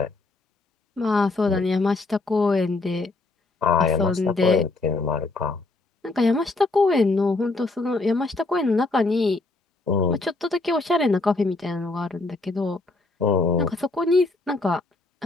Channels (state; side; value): quieter; right; 3.3 dB